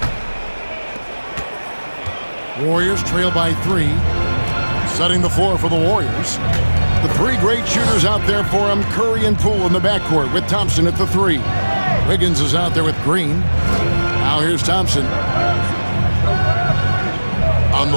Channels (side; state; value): both; inverted; correlation -1.00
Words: Warriors trail by 3. Setting the floor for the Warriors. The 3 great shooters out there for them, Curry and Poole in the backcourt with Thompson at the 3. Wiggins is out there with Green. Now here's Thompson. On